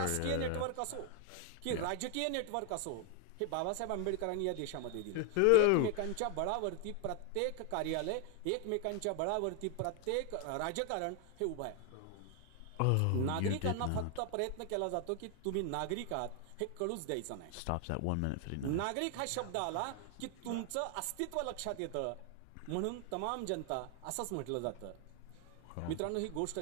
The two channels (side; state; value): both; different; correlation 0.00